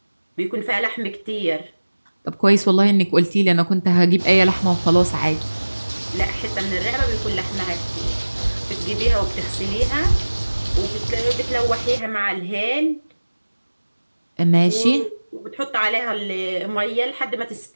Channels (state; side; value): inverted; both; correlation -1.00